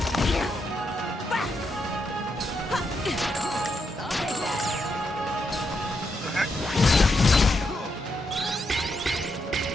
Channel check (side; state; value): both; normal; correlation 0.81